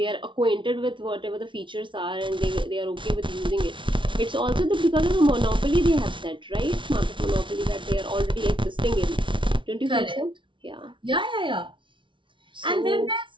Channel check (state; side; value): late; left; 0.24 ms